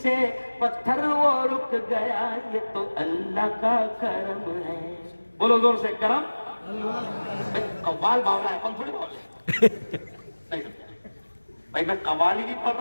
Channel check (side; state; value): both; inverted; correlation -1.00